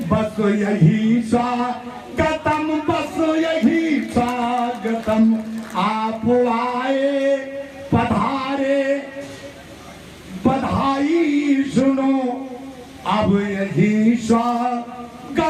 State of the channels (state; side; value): identical; both; correlation 1.00